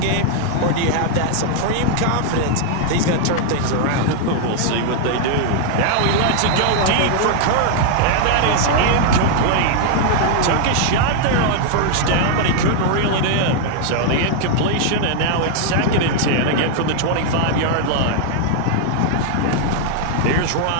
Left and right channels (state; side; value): different; both; correlation 0.00